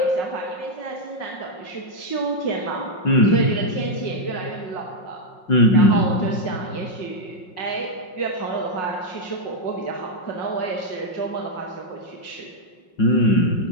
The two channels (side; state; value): right; late; 5.5 ms